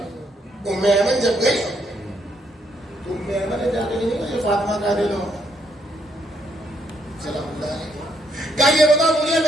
ام ایمن جب گئی تو ام ایمن نے جا کے نہیں کہا یہ فاطمہ کا دے دو. سلام اللہ علیہ. کیا یہ بتاؤ مجھے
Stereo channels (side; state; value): both; normal; correlation 0.73